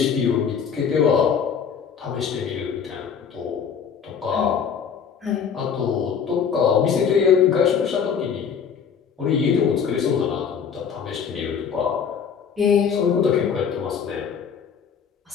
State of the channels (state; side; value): quieter; right; 7.0 dB